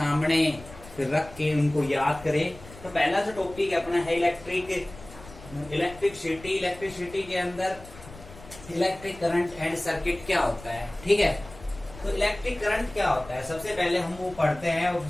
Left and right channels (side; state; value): left; noise; rumble, 18 dB below the sound